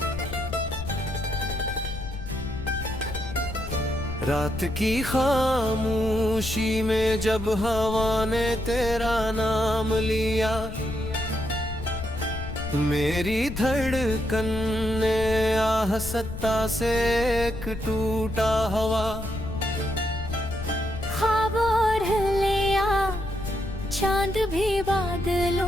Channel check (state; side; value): noise; left; rumble, 9 dB below the sound